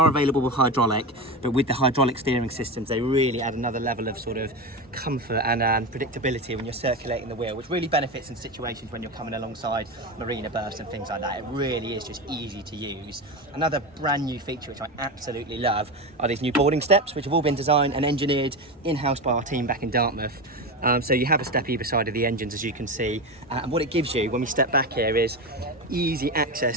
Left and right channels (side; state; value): both; normal; correlation 0.20